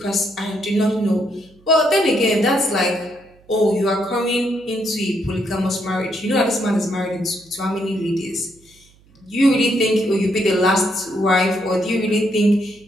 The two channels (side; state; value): right; noise; hum, 30 dB below the sound